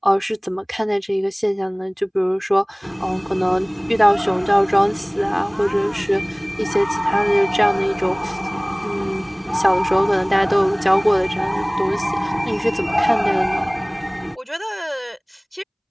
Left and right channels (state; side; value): identical; both; correlation 1.00